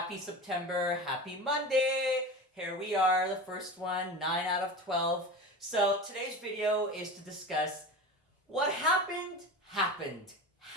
September, happy Monday! Here we are, the first one, 9 out of 12. So today's video is to discuss what happened.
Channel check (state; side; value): normal; both; correlation 0.29